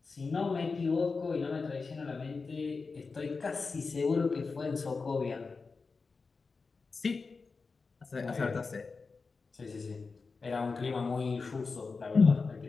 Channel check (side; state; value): right; quieter; 4.4 dB